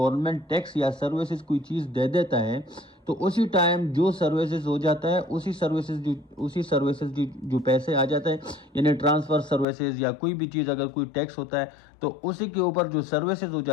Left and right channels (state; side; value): drops out; right; at 9.7 s